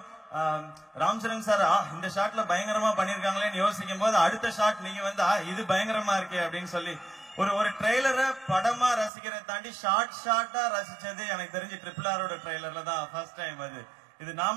ராம் சரண் சார் இந்த ஷாட்ல பயங்கரமா பண்ணிருக்காங்களேன்னு யோசிக்கும் போது அடுத்த ஷாட் நீங்க வந்து இது பயங்கரமா இருக்கே அப்படின்னு சொல்லி ஒரு ட்ரெய்லரை படமா ரசிக்கிறத தாண்டி ஷார்ட்டா ரசிச்சது எனக்கு தெரிஞ்சு RRR ட்ரெய்லர்ல தான் ஃபர்ஸ்ட் டைம். அது இது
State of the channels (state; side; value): drops out; left; at 9.1 s